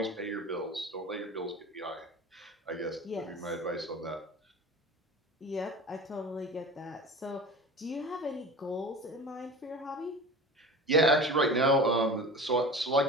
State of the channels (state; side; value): normal; both; correlation 0.35